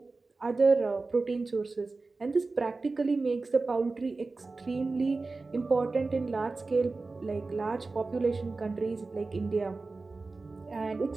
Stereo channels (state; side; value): quieter; left; 3.7 dB